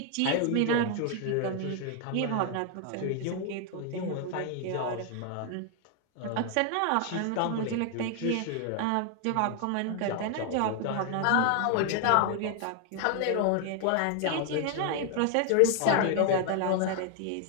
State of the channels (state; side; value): different; both; correlation 0.00